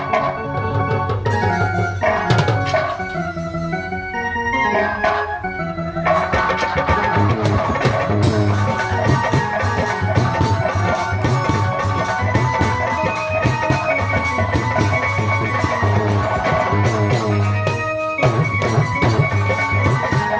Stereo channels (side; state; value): both; identical; correlation 1.00